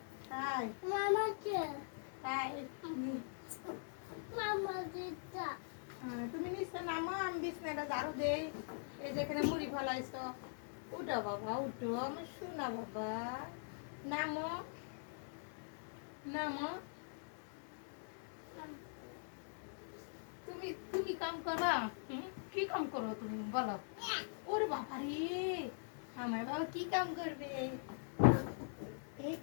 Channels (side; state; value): right; silent; digital silence